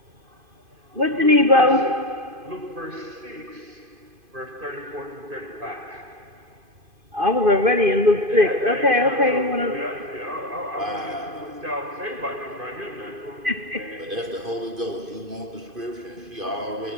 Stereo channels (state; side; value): late; left; 2.5 ms